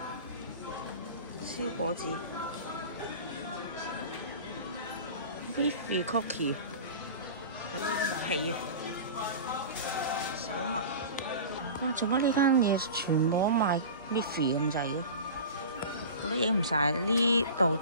燒果子 Miffy Cookie。皮手襪，哇！做乜呢間嘢全部都賣 Miffy 咁滯嘅？我都影唔晒，呢度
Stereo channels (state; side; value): inverted; both; correlation -0.34